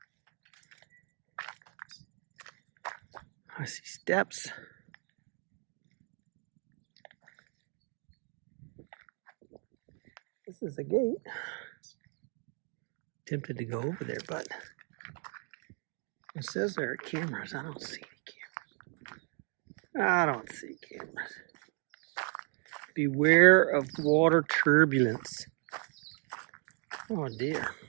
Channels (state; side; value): quieter; left; 39.2 dB